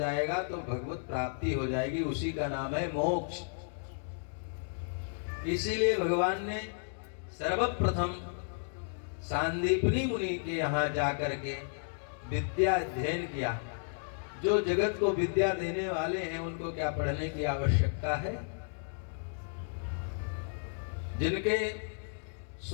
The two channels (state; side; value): silent; right; digital silence